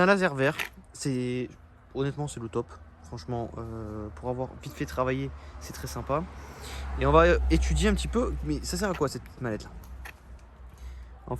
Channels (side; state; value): both; identical; correlation 1.00